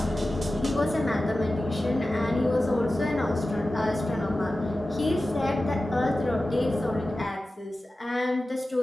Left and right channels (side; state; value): both; normal; correlation 0.95